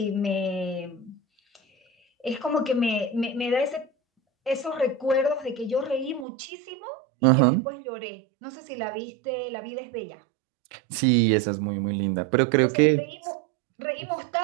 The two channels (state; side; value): drops out; left; at 6.2 s